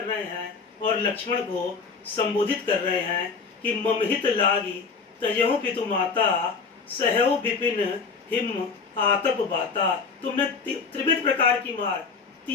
रहे हैं, और लक्ष्मण को संबोधित कर रहे हैं कि ममहित लागी तजेहु पितु माता, सहौ विपिन हिम आतप बाता। तुमने त्रिविध प्रकार की मार,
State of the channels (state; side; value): quieter; right; 5.0 dB